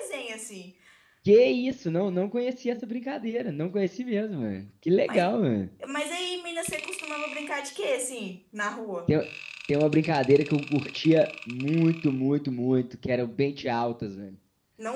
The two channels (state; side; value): identical; both; correlation 1.00